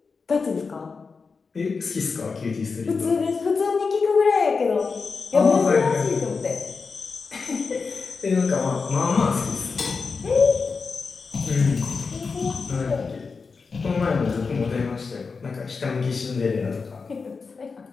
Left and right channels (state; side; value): quieter; right; 4.8 dB